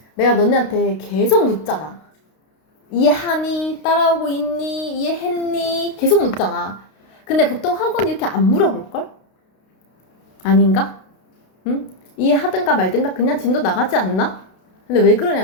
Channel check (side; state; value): right; late; 32 ms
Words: 내가 너네한테 계속 묻잖아. 이해하니? 따라오고 있니? 이해했니? 계속 묻잖아. 근데 보통 학원 이렇게 안 물어볼걸? 아닌가? 응? 이해하든가 말든가 그냥 진도 나가지 않나? 근데 왜